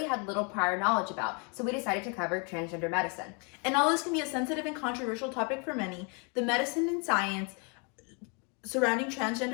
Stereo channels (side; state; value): right; quieter; 34.9 dB